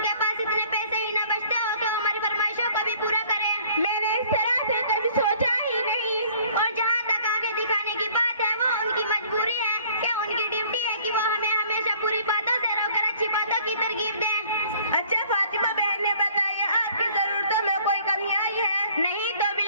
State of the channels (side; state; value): both; inverted; correlation -0.55